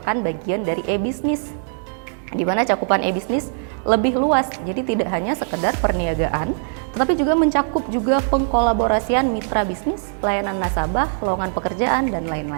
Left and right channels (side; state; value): left; silent; digital silence